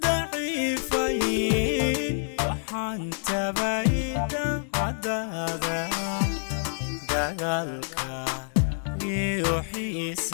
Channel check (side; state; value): right; silent; digital silence